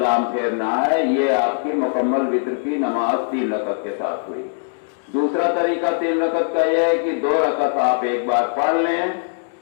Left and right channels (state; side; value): silent; right; digital silence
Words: پھیرنا ہے۔ یہ آپ کی مکمل وتر کی نماز 3 رکعت کے ساتھ ہوئی۔ دوسرا طریقہ 3 رکعت کا یہ ہے کہ 2 رکعت آپ ایک بار پڑھ لیں،